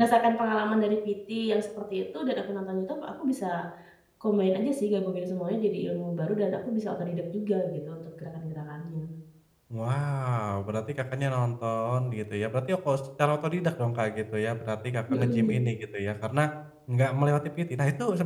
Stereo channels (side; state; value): both; identical; correlation 1.00